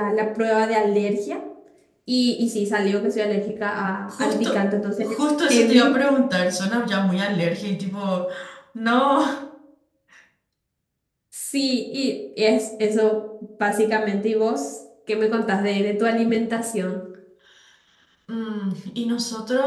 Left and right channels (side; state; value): both; identical; correlation 1.00